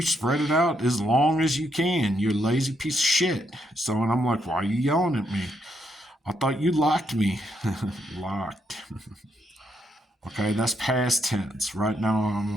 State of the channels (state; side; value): normal; both; correlation 0.77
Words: spread it out as long as you can. You're a lazy piece of shit. So, and I'm like, why are you yelling at me? I thought you locked me. Locked. Okay, that's past tense. Right now,